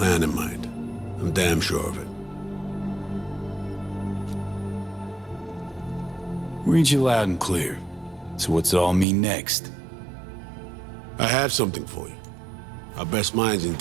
in mind. I'm damn sure of it. Read you loud and clear. So what's it all mean next? I have something for you. Our best minds in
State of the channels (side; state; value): left; drops out; at 9.1 s